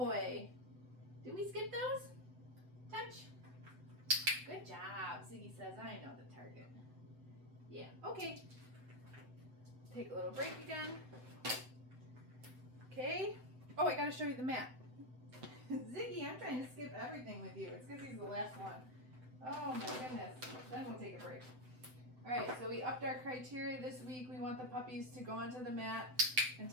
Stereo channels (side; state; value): left; late; 7.9 ms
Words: Did we skip those? Touch. Good job. Ziggy says, I know the target. Yeah, okay. Take a little break again. Okay. Oh, I gotta show you the mat. Ziggy, I'm trying to skip everything with you. It's because he's the last one. Oh my goodness. Then we'll take a break. All right, so we upped our criteria this week. We want the puppies to go onto the mat and